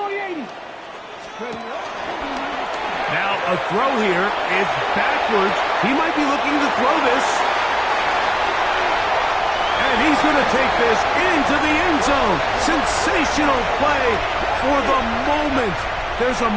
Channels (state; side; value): identical; both; correlation 1.00